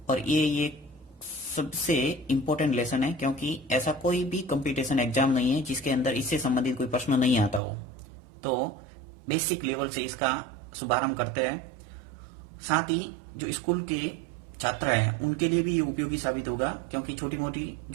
और ये सबसे इम्पोर्टेंट लेसन है क्योंकि ऐसा कोई भी कंपटीशन एग्जाम नहीं है जिसके अंदर इससे संबंधित कोई प्रश्न नहीं आता हो। तो बेसिक लेवल से इसका शुभारंभ करते हैं। साथ ही जो स्कूल के छात्र हैं उनके लिए भी ये उपयोगी साबित होगा क्योंकि छोटी मोटी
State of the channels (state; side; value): drops out; left; at 7.6 s